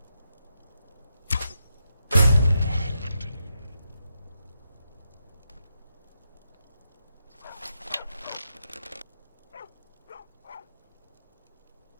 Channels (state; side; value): inverted; both; correlation -0.84